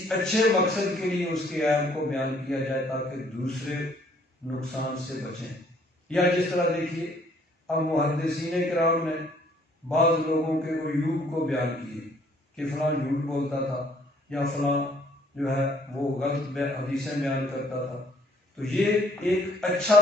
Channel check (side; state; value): both; normal; correlation 0.60